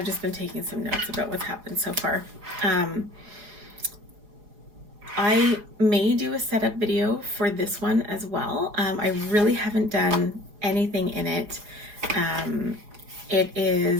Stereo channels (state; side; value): late; left; 4.8 ms